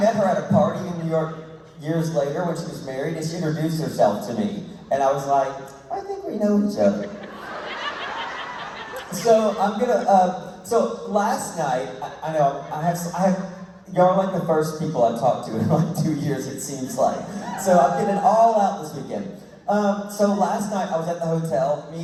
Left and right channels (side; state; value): both; identical; correlation 1.00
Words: met her at a party in New York years later when she was married, and she introduced herself to me. And I was like, I think we know each other. So so last night, I know, I have, y'all are like the first people I've talked to in like 2 years, it seems like. So I'm getting it all out this weekend. So last night I was at the hotel.